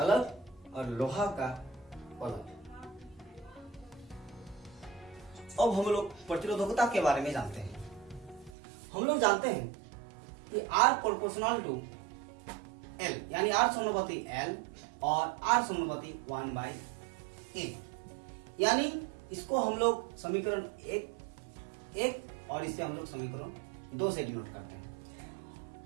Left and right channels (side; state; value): left; drops out; at 8.6 s